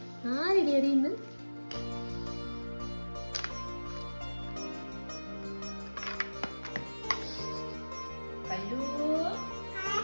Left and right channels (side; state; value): both; inverted; correlation -1.00